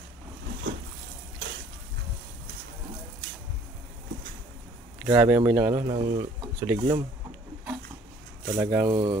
Grabe amoy ng ano, ng suliglom. Talagang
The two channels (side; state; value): both; normal; correlation 0.56